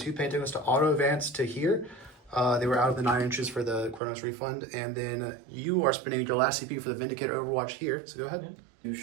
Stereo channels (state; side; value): drops out; left; at 4.0 s